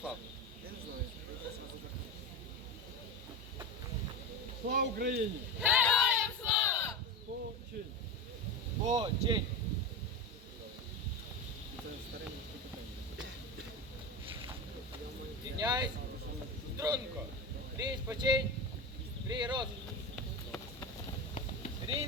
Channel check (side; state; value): both; normal; correlation 0.21